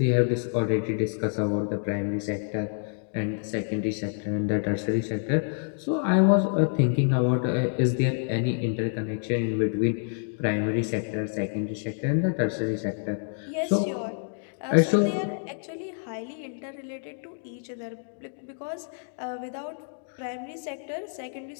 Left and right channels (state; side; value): silent; right; digital silence